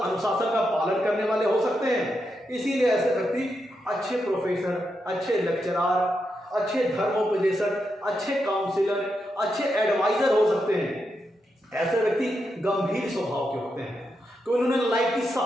अनुशासन का पालन करने वाले हो सकते हैं। इसीलिए ऐसे व्यक्ति अच्छे प्रोफेसर, अच्छे लेक्चरार, अच्छे धर्मोपदेशक, अच्छे काउंसिलर, अच्छे एडवाइजर हो सकते हैं। ऐसे व्यक्ति गंभीर स्वभाव के होते हैं, तो उन्होंने लाइफ की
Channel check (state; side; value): normal; both; correlation 0.84